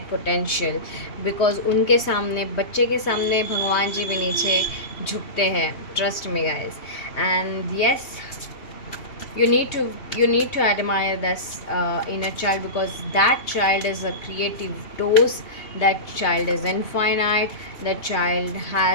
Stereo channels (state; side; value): late; right; 3.2 ms